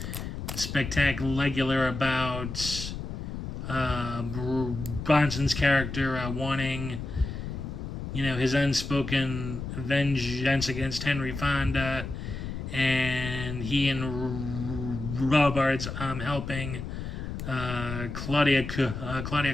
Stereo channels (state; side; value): noise; left; rumble, 6 dB below the sound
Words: spectacular about Bronson's character wanting his unspoken vengeance against Henry Fonda, and he and Robards helping Claudia